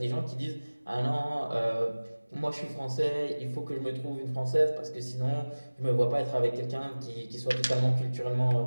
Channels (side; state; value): both; inverted; correlation -1.00